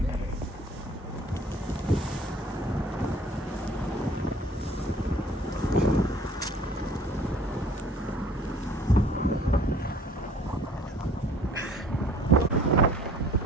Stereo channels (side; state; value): both; normal; correlation 0.53